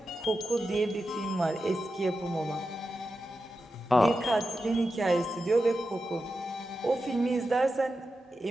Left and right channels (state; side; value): normal; both; correlation 0.90